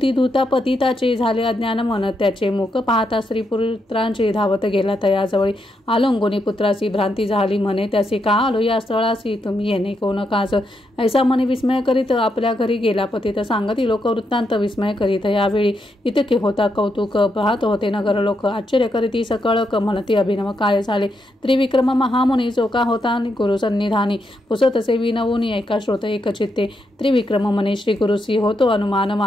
धुता पतिताचे झाले अज्ञान मन. त्याचे मुख पाहता स्त्री पुत्रांचे धावत गेला तयाजवळी. आलंगोनी पुत्रासी भ्रांती झाली म्हणे त्यासी. का आलो या स्थळासी तुम्ही येणे कोण काज. ऐसा म्हणे विस्मय करीत आपल्या घरी गेला पतित. सांगती लोक वृत्तांत विस्मय करीत यावेळी. इतके होता कौतुक पाहत होते नगर लोक. आश्चर्य करीती सकळक म्हणती अभिनव काय झाले. त्रिविक्रम महामुनी जो का होता गुरु सन्निधानी. पुसतसे विनवूनी एका श्रोत एक चित्ते. त्रिविक्रम म्हणे श्री गुरुसी होतो अनुमान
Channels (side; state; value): both; normal; correlation 0.81